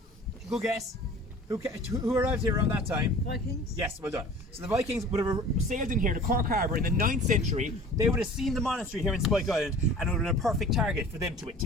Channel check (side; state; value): both; normal; correlation 0.44